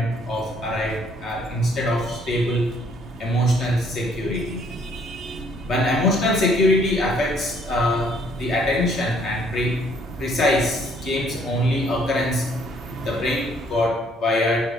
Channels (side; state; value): both; normal; correlation 0.63